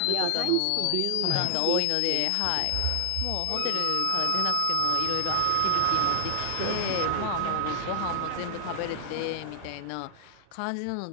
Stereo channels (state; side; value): different; both; correlation 0.00